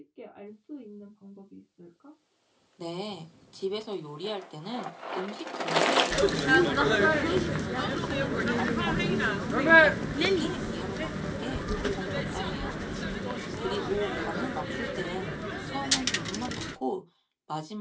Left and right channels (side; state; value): both; identical; correlation 1.00